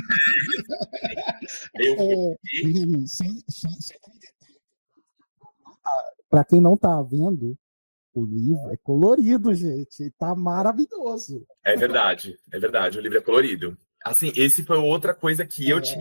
Eu Para quem não tá vendo, o livro é colorido, gente. Tá maravilhoso. É verdade, é verdade. O livro é colorido. Assim, esse foi outra coisa que eu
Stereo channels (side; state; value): both; inverted; correlation -1.00